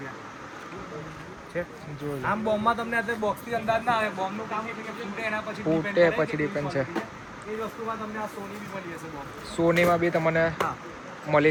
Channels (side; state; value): both; identical; correlation 1.00